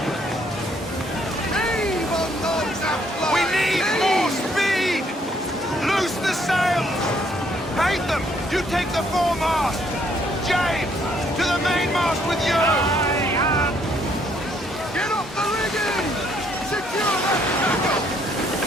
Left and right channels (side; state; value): both; normal; correlation 0.68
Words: Heave on those uplines! We need more speed! Loose the sails! Hate them! You take the foremast! James, to the mainmast with you! Get off the rigging!